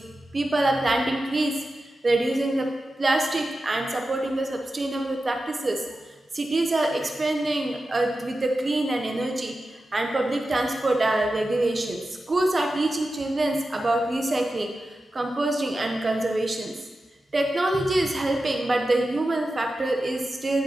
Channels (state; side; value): normal; both; correlation 0.92